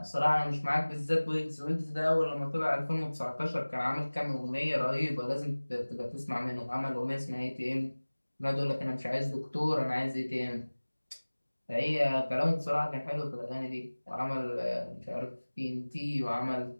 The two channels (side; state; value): both; inverted; correlation -1.00